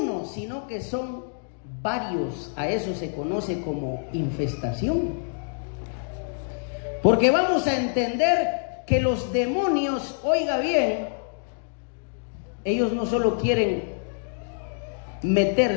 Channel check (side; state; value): right; silent; digital silence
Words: sino que son varios, a eso se conoce como infestación. Porque vamos a entender que los demonios, oiga bien, ellos no solo quieren